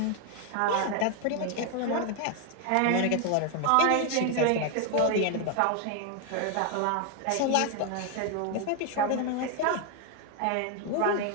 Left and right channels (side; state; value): both; different; correlation 0.01